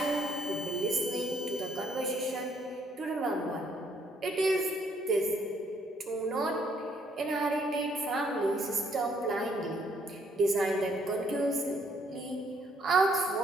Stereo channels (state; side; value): normal; both; correlation 0.68